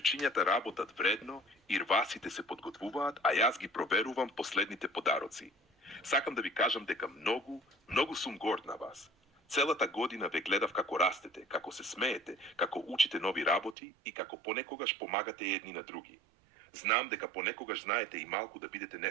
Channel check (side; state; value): left; drops out; at 13.8 s